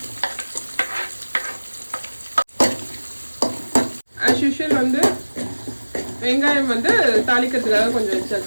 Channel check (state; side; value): inverted; both; correlation -1.00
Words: as usual வந்து வெங்காயம் வந்து தாளிக்கிறதுக்காக கொஞ்சம்